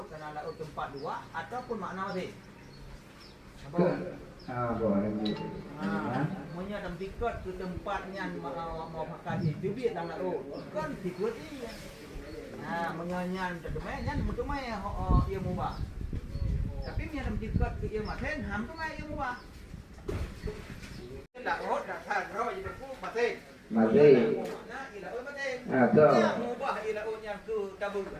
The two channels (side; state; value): both; identical; correlation 1.00